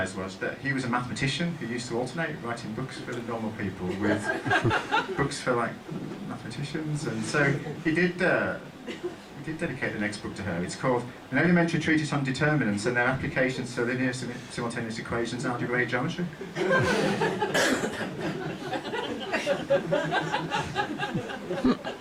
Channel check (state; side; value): identical; both; correlation 1.00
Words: was that he was a mathematician who used to alternate writing books for the normal people with books for like mathematicians, and so he did We did dedicate the next book to her. It's called An Elementary Treatise on Determinants and Their Applications to Linear Simultaneous Equations and Algebraic Geometry.